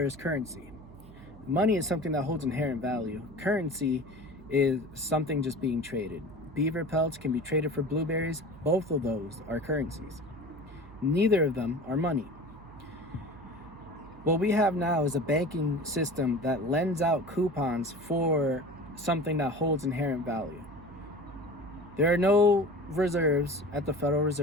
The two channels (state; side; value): noise; right; hum, 20 dB below the sound